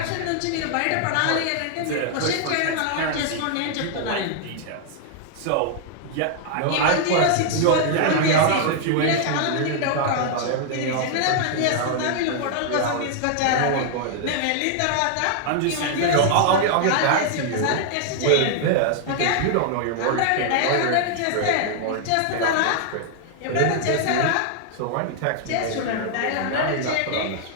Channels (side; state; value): both; different; correlation 0.00